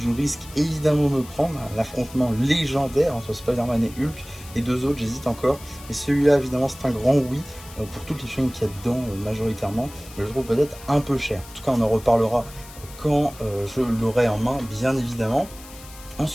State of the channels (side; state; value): left; noise; hiss, 18 dB below the sound